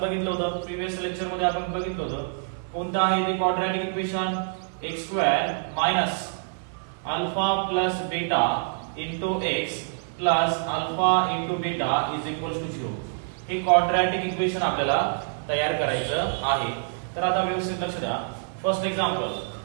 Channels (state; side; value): silent; left; digital silence